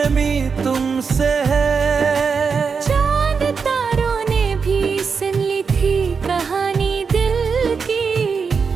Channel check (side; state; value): left; quieter; 5.5 dB